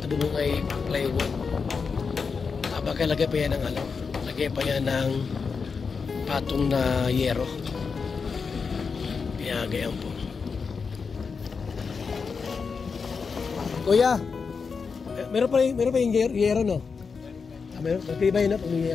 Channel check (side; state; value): right; quieter; 5.3 dB